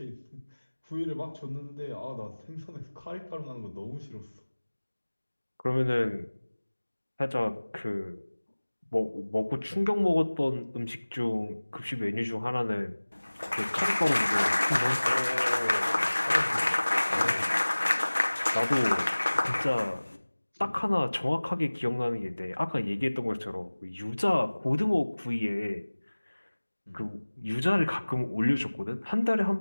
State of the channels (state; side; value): inverted; both; correlation -1.00